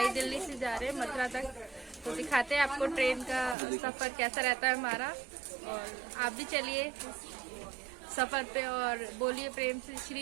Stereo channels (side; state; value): left; drops out; at 3.6 s